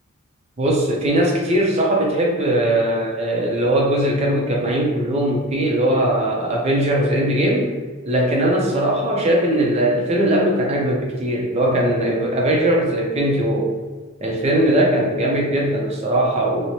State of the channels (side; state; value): both; normal; correlation 0.28